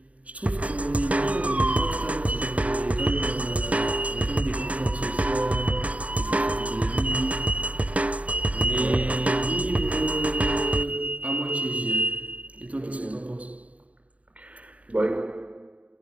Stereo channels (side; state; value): left; late; 0.067 ms